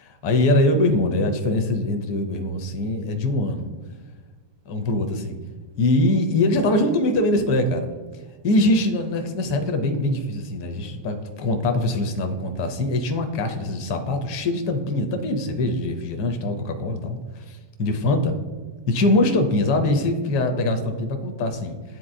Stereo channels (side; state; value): left; late; 1.2 ms